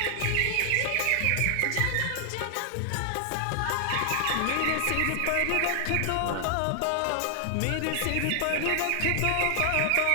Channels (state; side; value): different; both; correlation 0.00